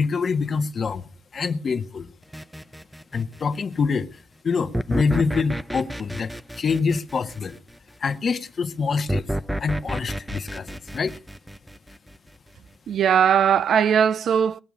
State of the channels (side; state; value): both; normal; correlation 0.78